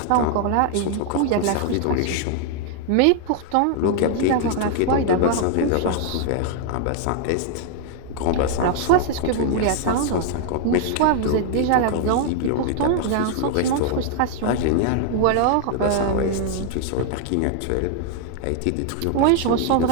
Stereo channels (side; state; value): both; different; correlation 0.00